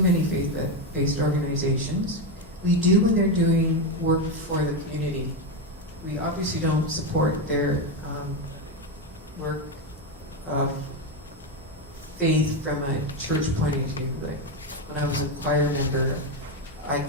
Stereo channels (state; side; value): normal; both; correlation 0.10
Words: many faith-based organizations. We do when they're doing work for the community. We obviously don't support their work of faith from a church point of view. Like when I was a choir member, I